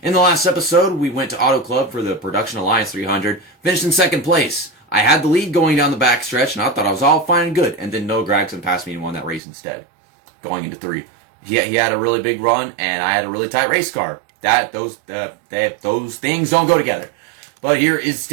In the last episode, we went to Auto Club for the Production Alliance 300, finished in second place. I had the lead going down the backstretch, and I thought I was all fine and good, and then Noah Gragson passed me and won that race instead, going into 3. He had a really big run, and I had a really tight race car. Those things don't go together. But here is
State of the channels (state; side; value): drops out; left; at 9.4 s